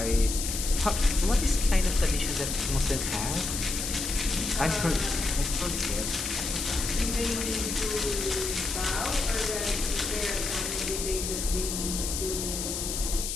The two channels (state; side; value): noise; left; hiss, 3 dB below the sound